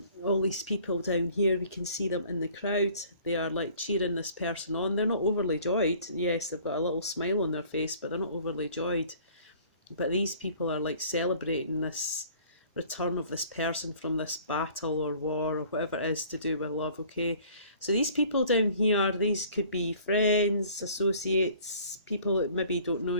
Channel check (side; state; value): both; inverted; correlation -0.53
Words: All these people down here, we can see them in the crowd. They are like cheering this person on. They're not overly joyed. Yes, they've got a little smile on their face, but they're not overly joyed. But these people are like celebrating this return of this person from this battle or war or whatever it is to do with love, okay? So these people down here, these could be friends, associates, people that maybe don't know